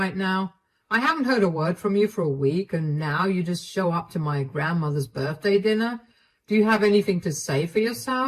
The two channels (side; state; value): both; identical; correlation 1.00